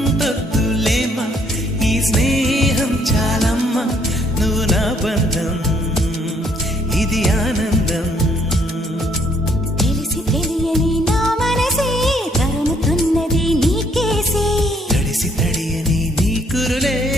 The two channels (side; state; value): both; normal; correlation 0.66